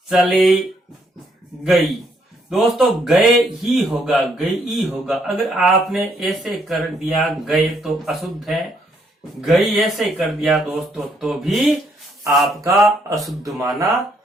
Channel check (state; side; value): normal; both; correlation 0.71